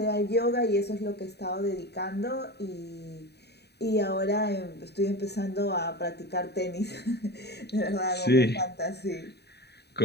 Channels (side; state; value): right; late; 0.48 ms